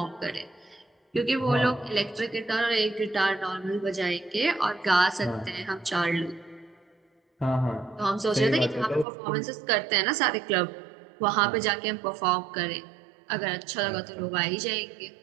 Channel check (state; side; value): drops out; left; at 9.1 s